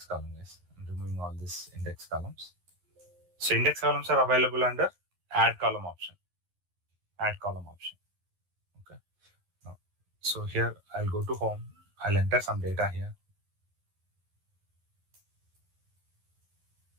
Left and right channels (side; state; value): left; late; 11 ms